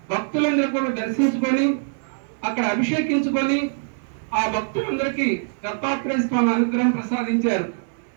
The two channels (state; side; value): silent; left; digital silence